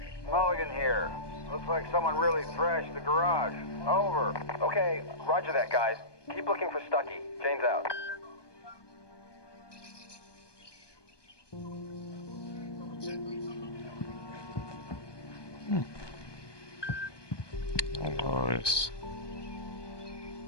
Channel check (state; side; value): late; right; 1.2 ms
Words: Mulligan here. Looks like someone really thrashed the garage. Over. Okay, roger that, guys. Keep looking for Stucky. Jane's out. Nice.